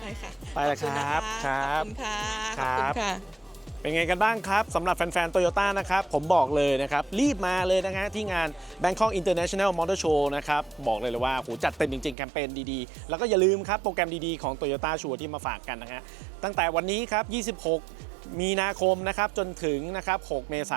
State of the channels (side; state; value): left; drops out; at 12.2 s